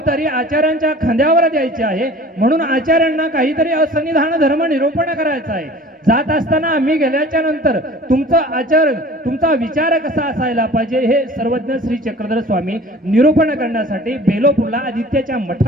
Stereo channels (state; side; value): normal; both; correlation 0.45